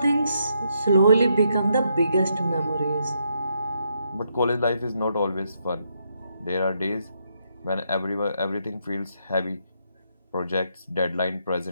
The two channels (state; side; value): inverted; both; correlation -0.77